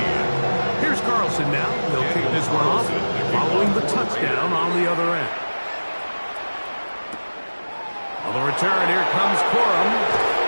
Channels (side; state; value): both; inverted; correlation -1.00